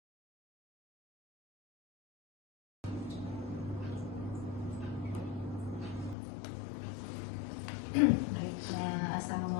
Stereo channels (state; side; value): drops out; right; at 6.2 s